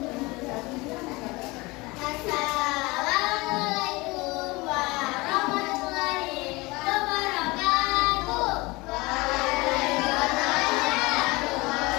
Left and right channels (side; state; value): right; quieter; 23.4 dB